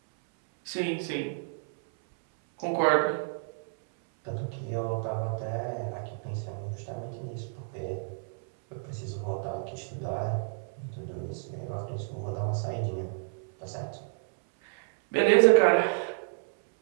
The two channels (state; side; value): silent; left; 58 dB below the other